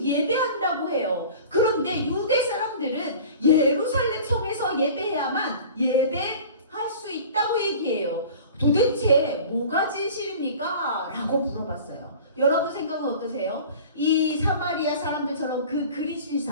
예배한다고 해요. 그런데 유대 사람들은 예루살렘 성에서 예배해야만 예배할 수 있다고 얘기해요. 도대체 뭐가 진실입니까? 라고 물어봤어요. 여러분 생각은 어떠세요? 이 사마리아 사람들처럼 그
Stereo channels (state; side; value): inverted; both; correlation -0.41